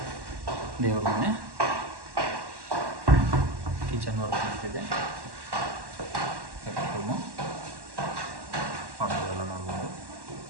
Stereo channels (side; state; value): left; late; 1.1 ms